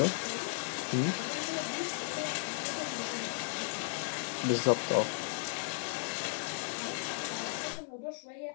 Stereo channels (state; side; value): silent; right; 54 dB below the other